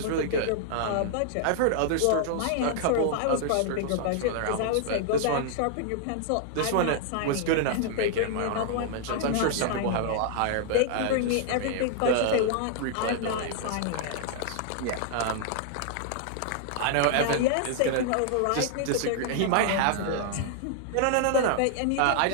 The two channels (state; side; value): different; both; correlation -0.01